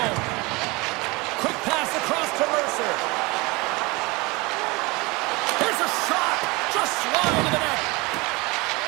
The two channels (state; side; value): quieter; left; 24.8 dB